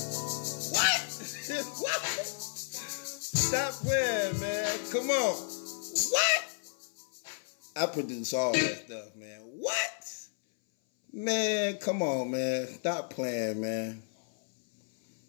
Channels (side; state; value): right; silent; 56 dB below the other